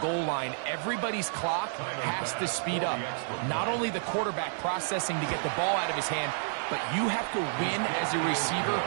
line, everybody's clock has to speed up. Not only the quarterback processing to get the ball out of his hand, but you have to win as a receiver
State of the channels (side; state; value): left; silent; 58 dB below the other